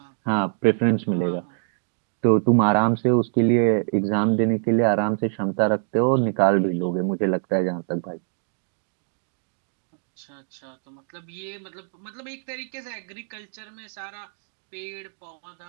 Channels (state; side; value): silent; left; digital silence